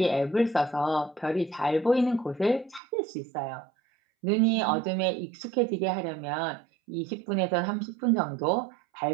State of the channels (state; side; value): drops out; left; at 2.8 s